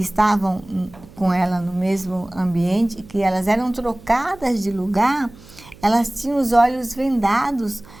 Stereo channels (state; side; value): noise; right; hum, 22 dB below the sound